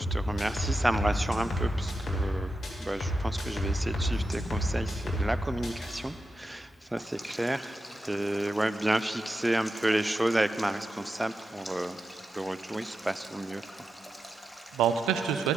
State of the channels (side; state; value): both; normal; correlation 0.89